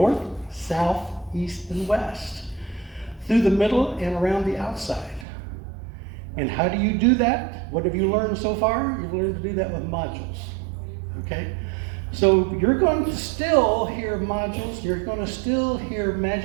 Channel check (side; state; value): left; drops out; at 5.2 s